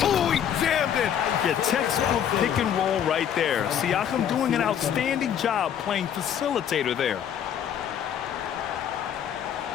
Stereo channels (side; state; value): right; quieter; 9.2 dB